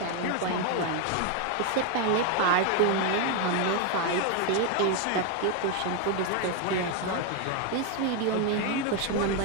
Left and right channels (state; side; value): different; both; correlation 0.01